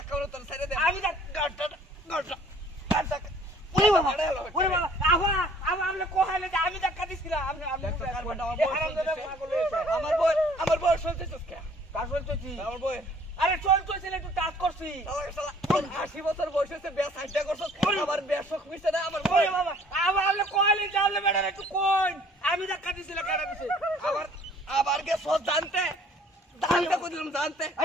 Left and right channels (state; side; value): normal; both; correlation 0.56